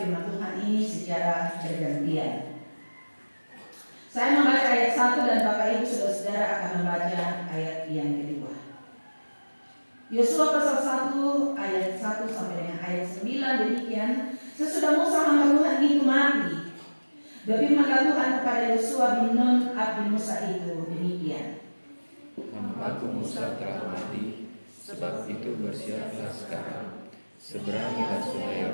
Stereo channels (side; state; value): both; inverted; correlation -1.00